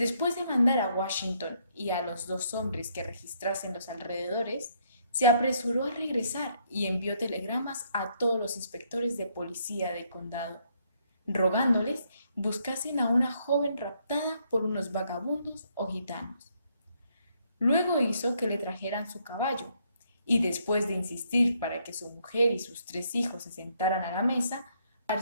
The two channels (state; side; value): inverted; both; correlation -0.71